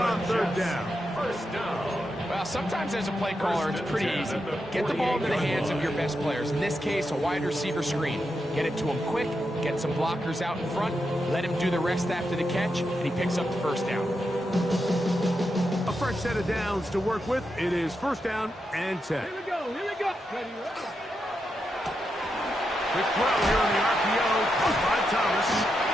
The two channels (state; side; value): normal; both; correlation 0.86